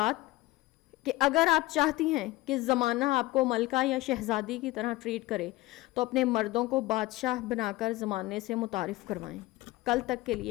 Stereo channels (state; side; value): quieter; right; 19.0 dB